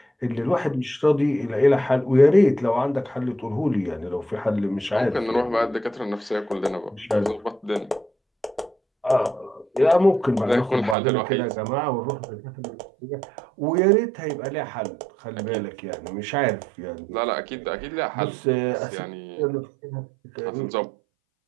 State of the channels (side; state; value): left; drops out; at 11.0 s